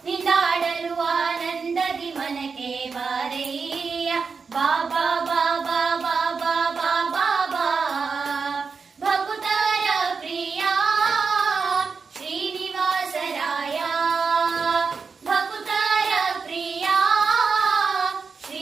ನಿಂದಾಡಲು ಆನಂದದಿ ಮನಕ್ಕೆ ಬಾರಯ್ಯ ಬಾಬಾ ಬಾಬಾ ಬಾಬಾ ಬಾಬಾ ಬಾ ಭಕ್ತರ ಪ್ರಿಯ ಶ್ರೀನಿವಾಸರಾಯ ಭಕ್ತರ ಪ್ರಿಯ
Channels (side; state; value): left; quieter; 5.2 dB